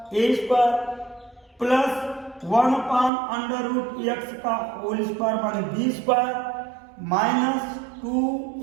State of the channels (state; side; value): drops out; left; at 3.1 s